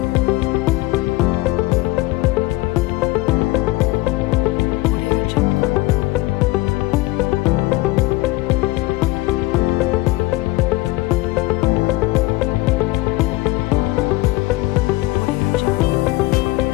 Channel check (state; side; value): quieter; right; 19.9 dB